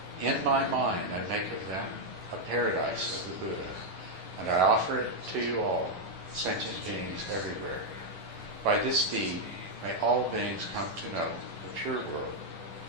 In my mind I make of them a paradise of the Buddha, and I offer it to you all, sentient beings everywhere. By this deed, may all beings come to know the pure world,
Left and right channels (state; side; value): late; left; 11 ms